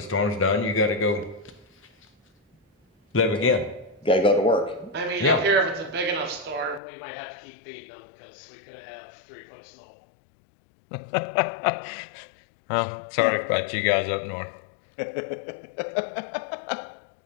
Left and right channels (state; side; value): drops out; right; at 6.8 s